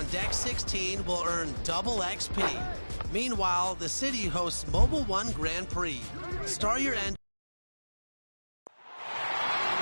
Deck 16 will earn double XP. Meanwhile, the city hosts Mobile One Grand Prix. Start your end.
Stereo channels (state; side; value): inverted; both; correlation -1.00